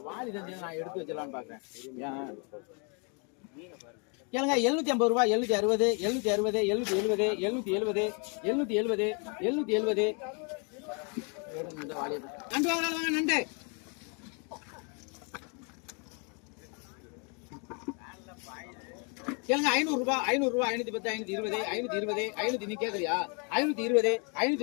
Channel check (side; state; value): right; quieter; 35.9 dB